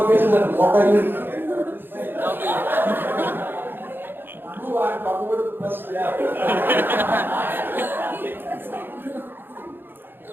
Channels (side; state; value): left; late; 0.099 ms